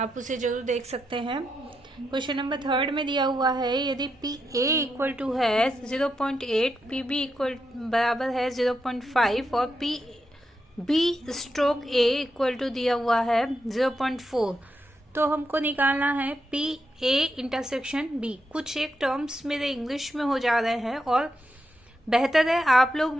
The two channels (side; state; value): both; normal; correlation 0.84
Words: उसे जरूर देख सकते हैं। क्वेश्चन नंबर थर्ड में दिया हुआ है, यदि पी ए इक्वल टू है 0.8, पी बी इक्वल बराबर है 0.5 और P B stroke A equal to दिया हुआ है 0.4, तो हमको निकालना है पी ए इंटरसेक्शन बी। कुछ एक टर्म्स मेरे इंग्लिश में हो जा रहे हैं और बेहतर है आप लोग